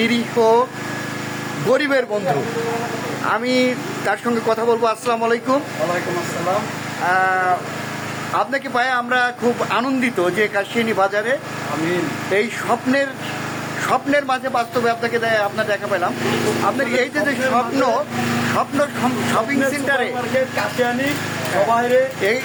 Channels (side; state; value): both; identical; correlation 1.00